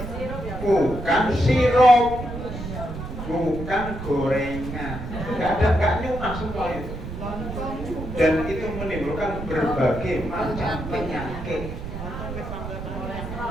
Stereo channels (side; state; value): right; noise; rumble, 8 dB below the sound